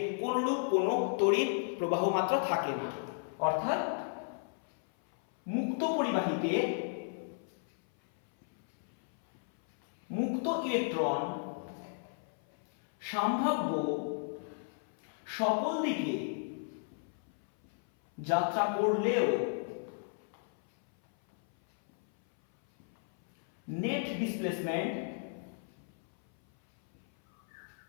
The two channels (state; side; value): silent; right; 55 dB below the other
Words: কোনরূপ কোনো তড়িৎ প্রবাহ মাত্রা থাকে না। অর্থাৎ মুক্ত পরিবাহীতে মুক্ত ইলেকট্রন সম্ভাব্য সকল দিকে যাত্রা করলেও নেট ডিসপ্লেসমেন্ট